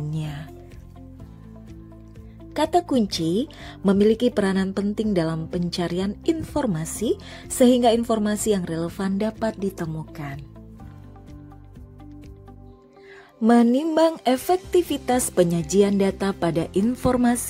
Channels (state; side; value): identical; both; correlation 1.00